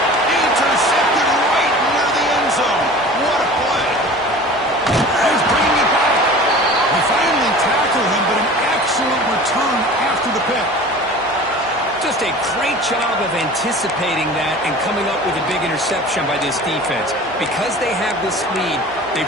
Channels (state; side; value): normal; both; correlation 0.40